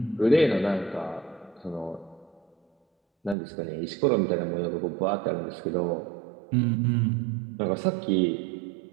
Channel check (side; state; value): left; drops out; at 3.4 s